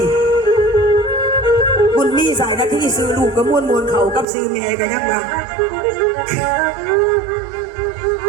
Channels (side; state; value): left; drops out; at 4.2 s